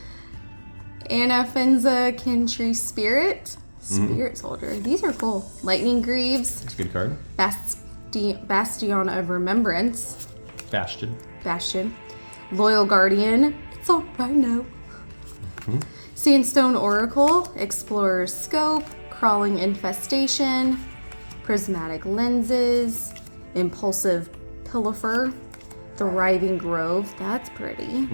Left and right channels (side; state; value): both; inverted; correlation -1.00